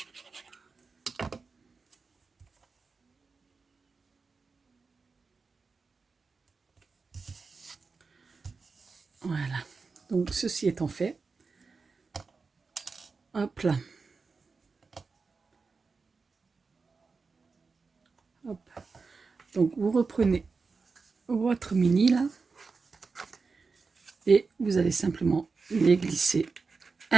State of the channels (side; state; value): left; quieter; 4.5 dB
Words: Voilà. Donc ceci étant fait, hop là. Hop. Donc vous reprenez votre mini là et vous allez simplement les glisser